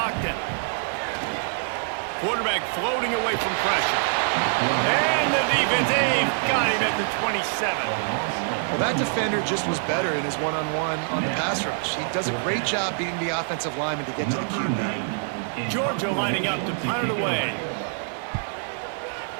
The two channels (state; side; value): silent; left; digital silence